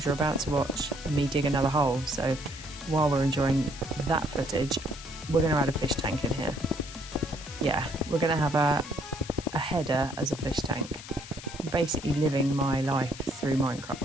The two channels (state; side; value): noise; left; hiss, 14 dB below the sound